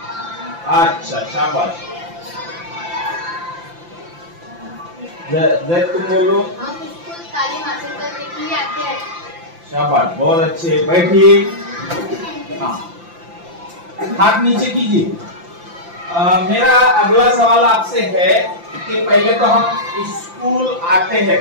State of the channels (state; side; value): late; left; 5.8 ms